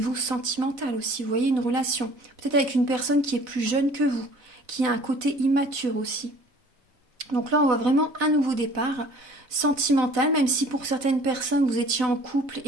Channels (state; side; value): late; left; 4.0 ms